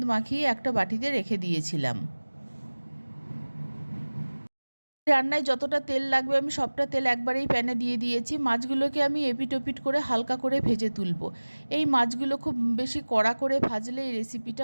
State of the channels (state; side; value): inverted; both; correlation -1.00